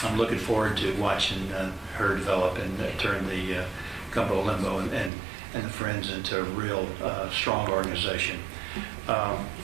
I'm looking forward to watching her develop and turn the Gumbo Limbo and the Friends into a real strong organization.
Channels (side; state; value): left; drops out; at 5.1 s